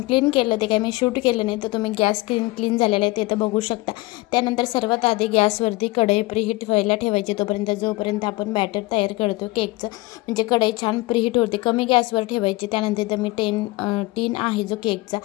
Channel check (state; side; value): quieter; right; 21.4 dB